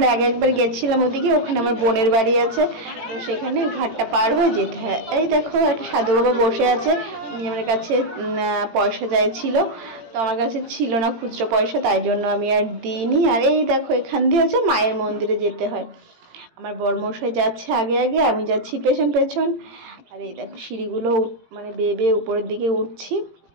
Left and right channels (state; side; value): late; left; 17 ms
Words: একবার গেছিলাম ওদিকে, ওখানে আমার বোনের বাড়ি আছে, তো সেখানে ঘাটটা পার হয়ে যেতে হয়। এই দেখো একটা সাধু বাবা বসে আছে, উনি আমার কাছে পয়সা চাইছিল, তো আমার কাছে ছিল না খুচরো পয়সা, তাই জন্য আমি আর দিইনি। আর এই দেখো এখান দিয়ে হচ্ছে মায়ের মন্দিরে যেতে হয়। আমার বরমশাই যাচ্ছে আগে আগে, আমি যাচ্ছি পেছন পেছন। আর এই দেখো সিঁড়িগুলো বেয়ে বেয়ে উপরের দিকে উঠছি।